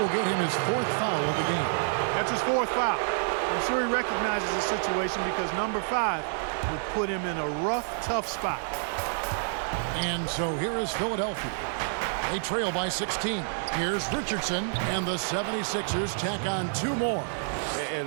get him his 4th foul of the game. That's his 4th foul. I'm sure he recognizes the situation because number 5 would put him in a rough, tough spot. And so here is Philadelphia. They trail by 16. Here's Richardson, and the 76ers tack on 2 more. And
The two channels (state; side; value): silent; left; digital silence